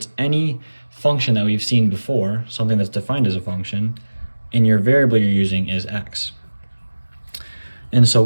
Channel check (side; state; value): both; inverted; correlation -1.00